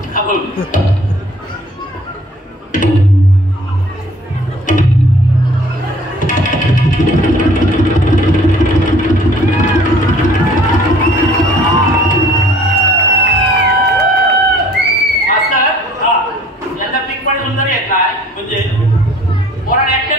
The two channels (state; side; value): normal; both; correlation 0.54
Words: यांचा पीक पण सुंदर येत नाही. म्हणजे पोराने